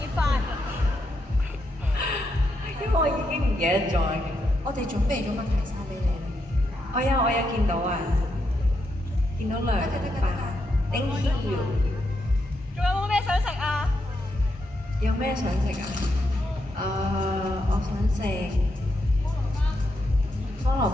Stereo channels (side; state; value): both; normal; correlation 0.82